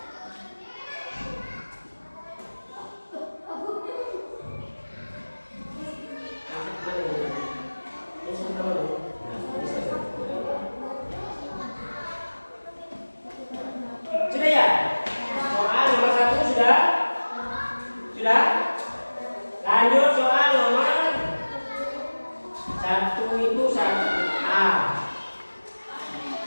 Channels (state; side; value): inverted; both; correlation -1.00